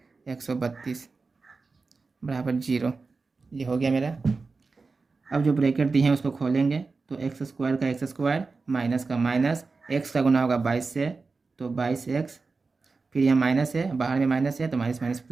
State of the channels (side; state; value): left; quieter; 4.2 dB